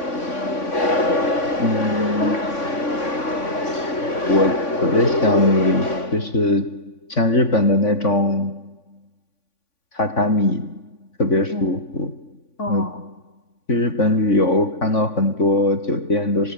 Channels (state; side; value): late; right; 3.5 ms